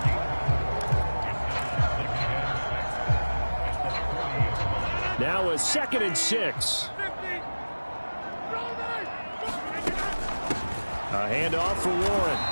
Now a 2nd and 6. A handoff for Warren.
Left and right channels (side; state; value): both; inverted; correlation -1.00